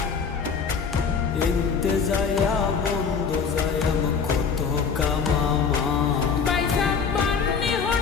এনতে যায়া বন্ধ যায়া কত কামামা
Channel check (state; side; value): quieter; right; 5.9 dB